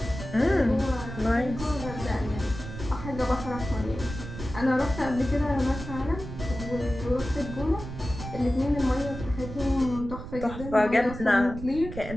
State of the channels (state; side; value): noise; right; rumble, 10 dB below the sound